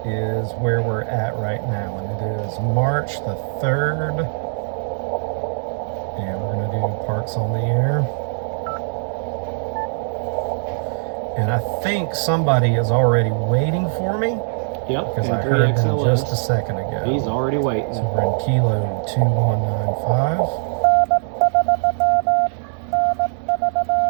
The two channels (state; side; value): silent; left; digital silence